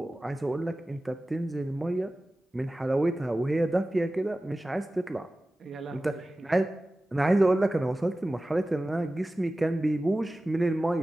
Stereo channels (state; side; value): normal; both; correlation 0.96